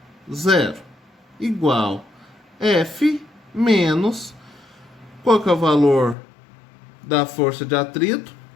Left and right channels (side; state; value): right; drops out; at 6.2 s